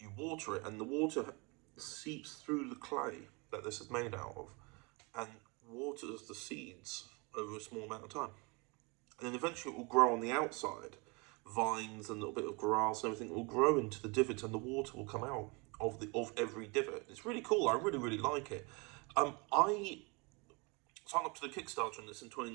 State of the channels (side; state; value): left; quieter; 29.2 dB